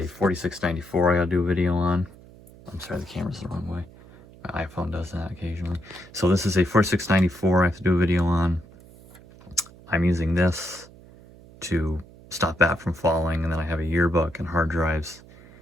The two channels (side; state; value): right; noise; hum, 22 dB below the sound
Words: 4694 I got to do a video on. I'm sorry, the camera's the wrong way. My iPhone does that occasionally. So this is a 4694 I have to do a video on. I'm using this to stop that from falling, and then I have a yearbook and hard drives